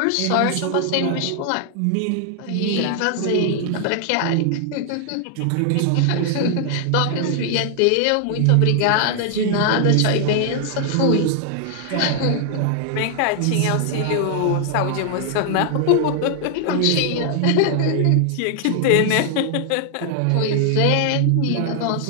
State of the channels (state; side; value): different; both; correlation 0.00